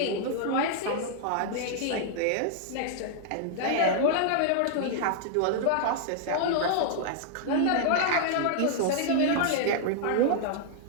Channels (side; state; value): both; different; correlation -0.01